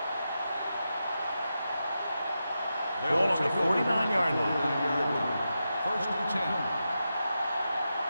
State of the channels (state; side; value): inverted; both; correlation -0.89